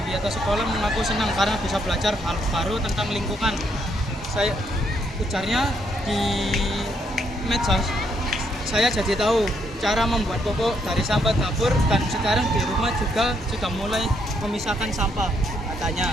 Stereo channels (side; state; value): both; normal; correlation 0.74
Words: sekolah mengaku senang karena bisa belajar hal baru tentang lingkungan. Ujarnya di medsos, saya jadi tahu cara membuat popok dari sampah dapur dan sekarang di rumah juga sudah mulai memisahkan sampah.